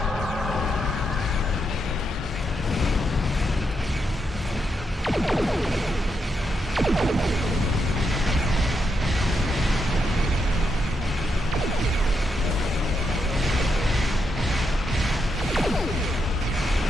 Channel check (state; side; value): normal; both; correlation 0.82